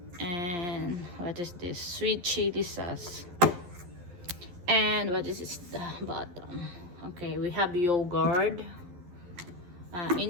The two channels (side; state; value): left; late; 12 ms